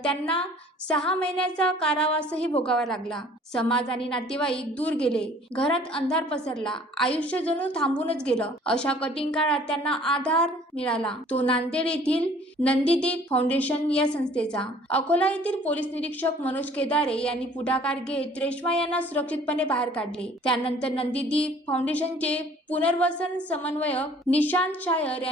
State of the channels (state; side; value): normal; both; correlation 0.54